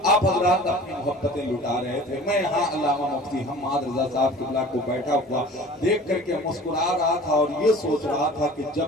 आप हजरात अपनी मोहब्बतें लुटा रहे थे। मैं यहाँ अल्लामा मुफ्ती हम्माद रजा साहब किबला को बैठा हुआ देख करके मुस्कुरा रहा था और ये सोच रहा था कि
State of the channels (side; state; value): both; normal; correlation 0.43